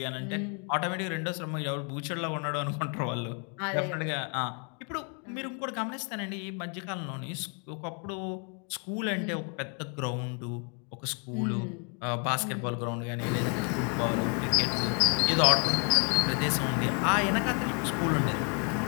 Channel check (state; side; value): quieter; right; 37.4 dB